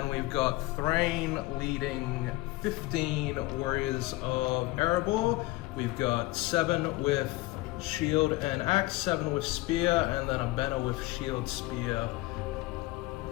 we've got Thrain leading 15 warriors of Erebor. We've got 7 with shield and axe, 7 with spear, and then a banner with shield, spear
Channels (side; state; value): right; quieter; 20.2 dB